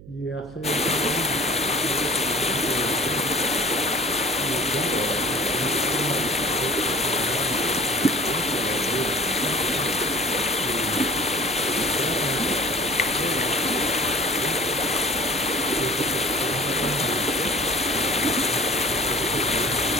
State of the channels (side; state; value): right; noise; hum, 18 dB below the sound